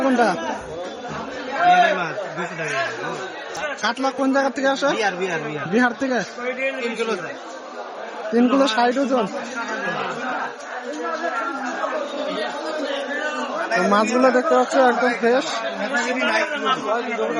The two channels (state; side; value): identical; both; correlation 1.00